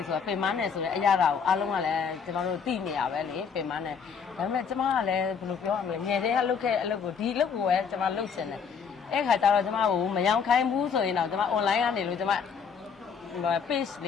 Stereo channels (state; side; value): quieter; right; 6.4 dB